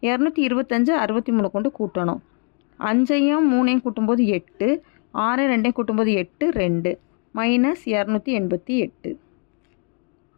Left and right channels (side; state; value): right; quieter; 37.9 dB